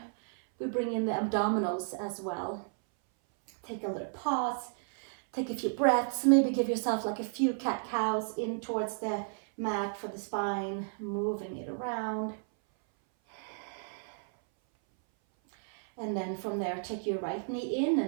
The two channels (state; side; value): silent; left; 56 dB below the other